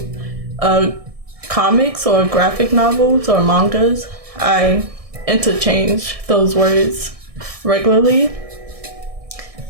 comics or graphic novels or mangas. I interchange those words regularly.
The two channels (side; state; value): left; late; 1.6 ms